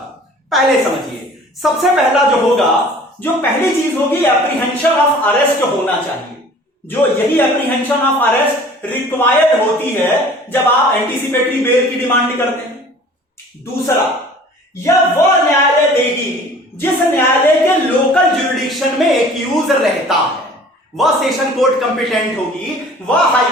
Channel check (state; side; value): normal; both; correlation 0.48